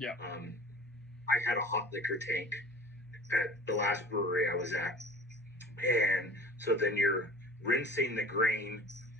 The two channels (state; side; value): normal; both; correlation 0.42